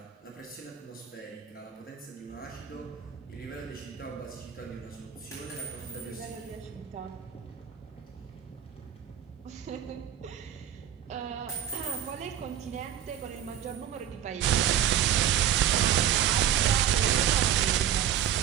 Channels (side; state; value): left; quieter; 10.2 dB